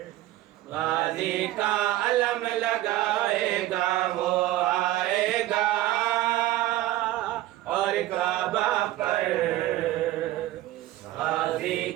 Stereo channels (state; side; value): quieter; left; 15.5 dB